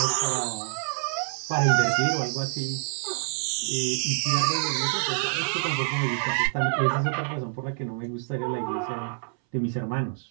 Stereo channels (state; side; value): silent; left; 60 dB below the other